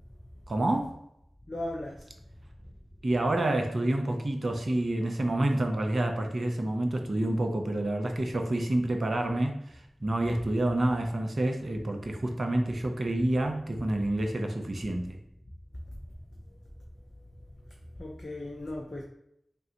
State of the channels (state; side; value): normal; both; correlation 0.97